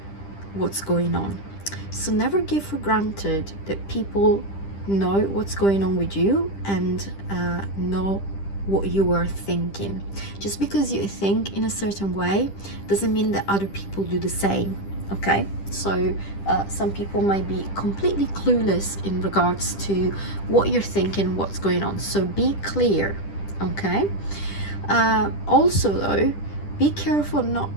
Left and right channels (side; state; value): right; late; 10 ms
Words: what's going on. So never give for granted that people know what's going on with you and know what you are thinking. Just because you think in a certain way doesn't mean that other people do the same. Okay, so some people might be completely clueless in regards to what you're thinking, what's going on. So be clear. Okay, also though, be careful not